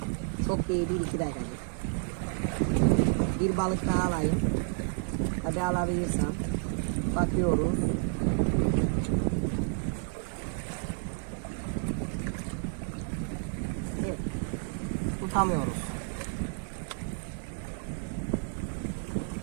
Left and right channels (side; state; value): left; silent; 57 dB below the other